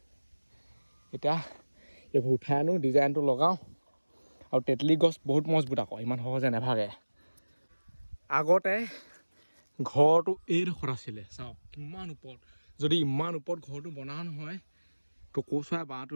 এতিয়া এইবোৰ উঠাই আনো ডিজাইনটো লগাওঁ আৰু তেতলি গছ বহুত মজবুত আকৌ ইমান সহজে নাভাগে আগতে ঘৰটো এইডোখৰত আছিলে চাওক কিমান ওপৰত যদি ইমান ওপৰত ঘৰটো বনাও নহয় টকৌ চৰাই বাঁহটো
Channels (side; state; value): both; inverted; correlation -1.00